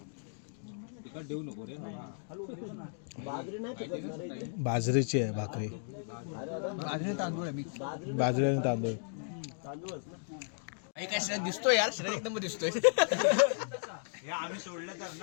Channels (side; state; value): right; silent; digital silence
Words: तिकट देऊ नको रे. बाजरी नाही पिकवणार आहे इथे. बाजरीची आहे भाकरी. बाजरी तांदूळ आहे मी. बाजरी आणि तांदूळ. तांदूळच ना. एक शरीर दिसतोय यार, शरीर एकदम दिसतोय. आम्ही सोडलं तर